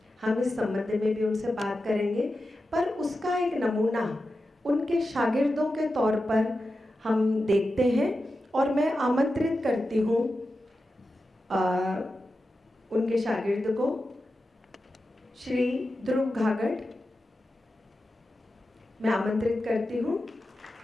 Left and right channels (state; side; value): normal; both; correlation 0.91